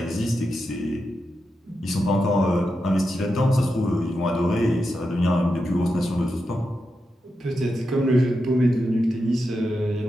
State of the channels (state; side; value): normal; both; correlation 0.88